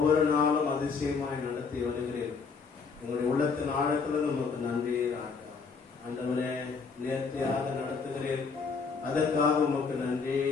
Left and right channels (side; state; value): right; quieter; 5.1 dB